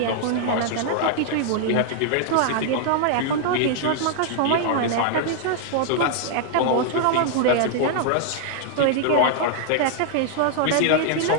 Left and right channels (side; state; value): both; different; correlation -0.01